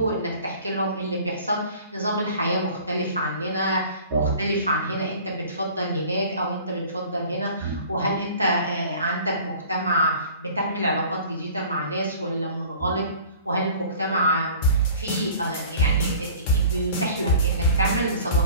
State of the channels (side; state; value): both; inverted; correlation -0.47